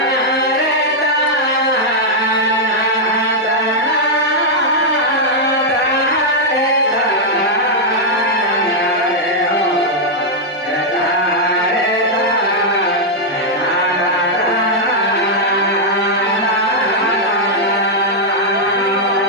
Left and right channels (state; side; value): normal; both; correlation -0.03